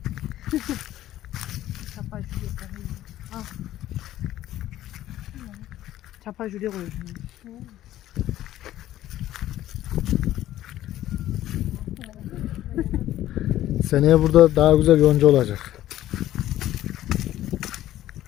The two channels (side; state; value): right; quieter; 13.6 dB